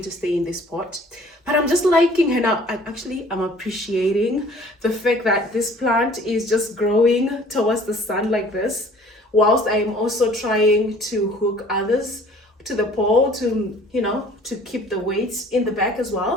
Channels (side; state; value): both; normal; correlation 0.52